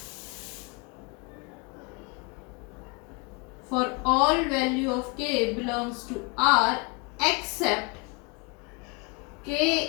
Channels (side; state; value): right; quieter; 30.4 dB